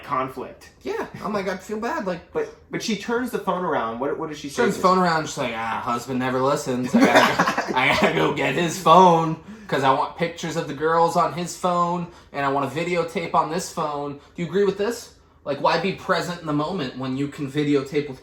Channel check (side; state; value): both; identical; correlation 1.00